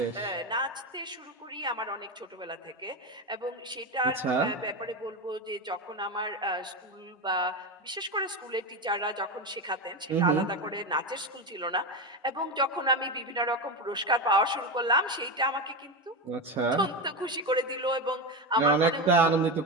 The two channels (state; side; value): normal; both; correlation 0.16